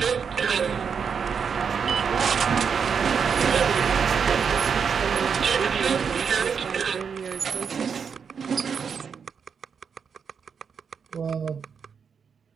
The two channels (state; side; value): quieter; left; 6.4 dB